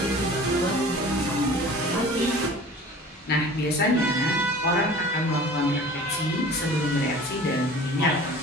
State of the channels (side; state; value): both; normal; correlation 0.43